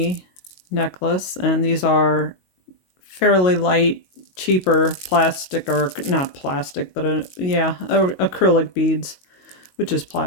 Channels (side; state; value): right; late; 22 ms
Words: necklace, and these are fairly light, cheaper plastic, or not plastic, but acrylic beads, which is